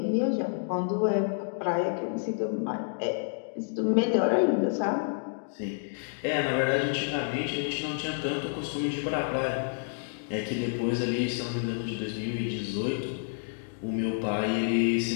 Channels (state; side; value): silent; right; digital silence